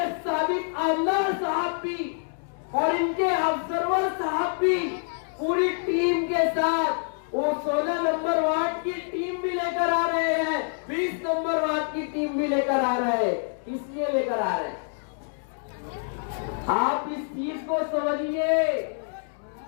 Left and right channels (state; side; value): silent; right; 59 dB below the other